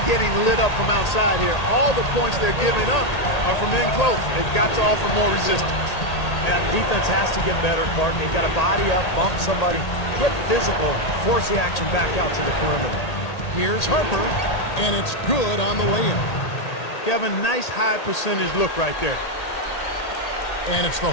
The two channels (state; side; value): late; right; 1.8 ms